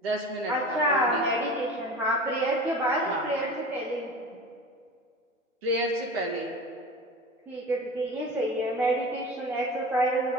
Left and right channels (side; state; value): both; normal; correlation 0.35